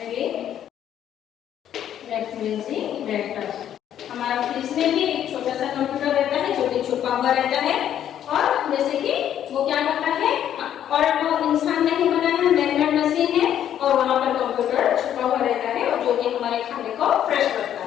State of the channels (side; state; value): right; quieter; 10.4 dB